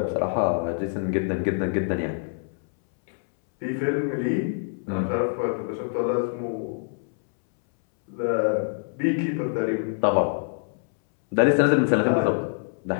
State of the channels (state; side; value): silent; right; 62 dB below the other